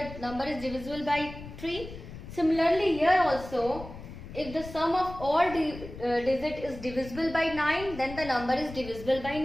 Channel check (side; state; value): left; noise; rumble, 13 dB below the sound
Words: number is divisible by 3. Similarly here also, if the sum of all digit is divisible by 9, then the number is divisible by